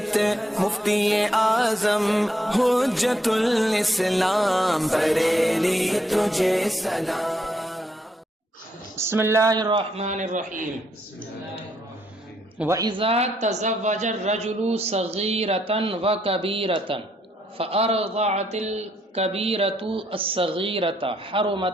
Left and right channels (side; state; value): both; normal; correlation 0.73